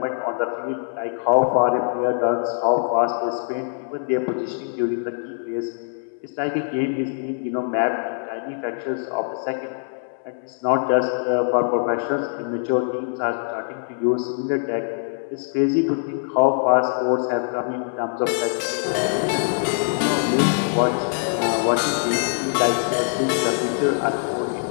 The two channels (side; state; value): right; silent; digital silence